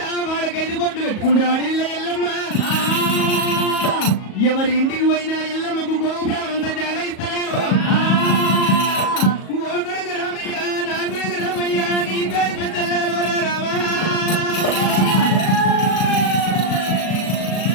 వాడకైదు బొట్లు పెట్టుకుంటా అడిల్ల ఎల్లమ్మ. ఎవరి ఇంటికి పోయినా ఎల్లమ్మకు గోపురాలంతా జాగా ఇస్తలేరు. ఓ కొడుకు రామయ్య, నా కొడుకు రామయ్య, నీ పేరు పెద్దల్లారా రామా.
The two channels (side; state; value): right; late; 37 ms